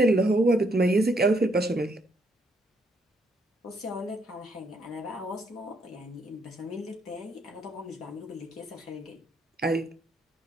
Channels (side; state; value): both; normal; correlation 0.72